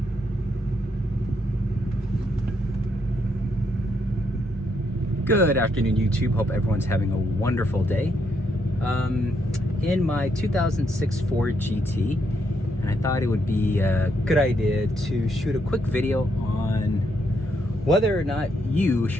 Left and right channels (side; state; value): both; normal; correlation 0.77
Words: Good afternoon, YouTube. Hope everyone's having a wonderful day. In my 2006 Ford GT, and I thought it would be a good idea to shoot a quick video on whether or not you